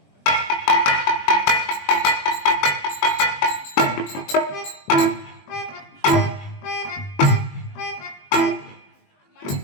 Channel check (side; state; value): right; late; 21 ms